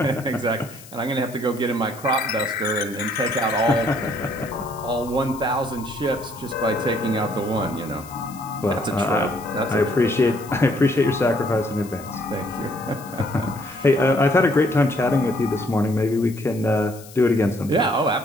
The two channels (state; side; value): noise; left; hiss, 19 dB below the sound